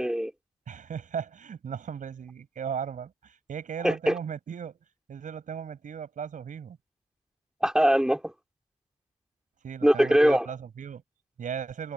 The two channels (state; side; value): normal; both; correlation 0.92